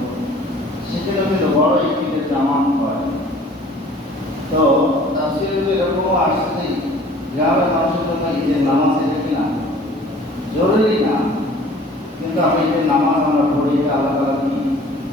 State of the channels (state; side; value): normal; both; correlation 0.50